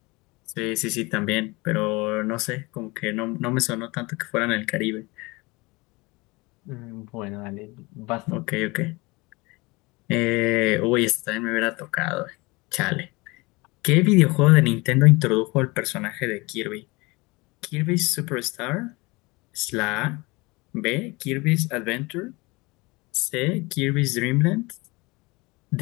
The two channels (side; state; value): right; quieter; 24.5 dB